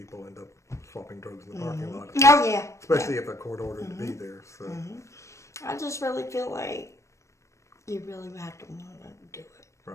end up swapping drugs in the parking lot. Oh, yeah. Especially if they're court-ordered to be there. So. I just really feel like you really have to want to do it.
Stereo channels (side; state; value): right; late; 0.15 ms